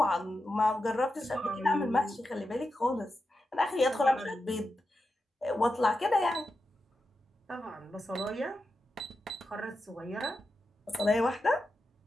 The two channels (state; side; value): normal; both; correlation 0.89